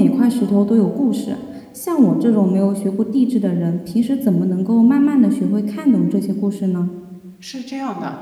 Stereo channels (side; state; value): both; identical; correlation 1.00